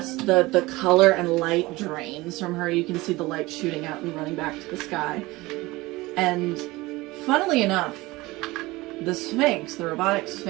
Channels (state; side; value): quieter; left; 20.7 dB